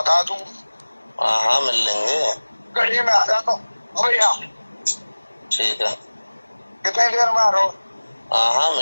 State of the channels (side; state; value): both; inverted; correlation -1.00